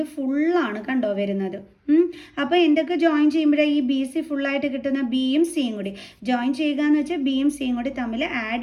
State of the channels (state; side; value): identical; both; correlation 1.00